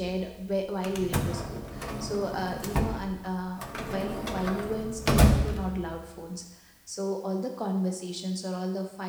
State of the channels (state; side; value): identical; both; correlation 1.00